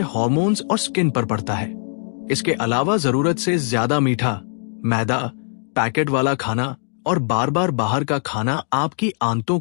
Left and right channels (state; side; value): silent; right; digital silence